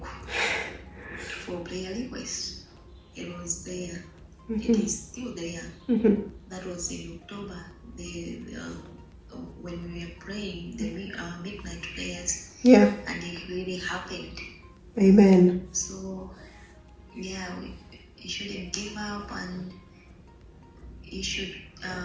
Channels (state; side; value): identical; both; correlation 1.00